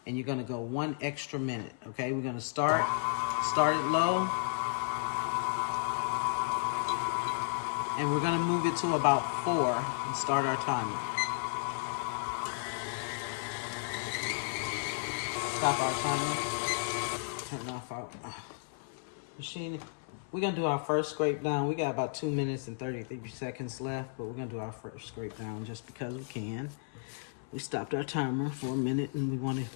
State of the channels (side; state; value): right; silent; 55 dB below the other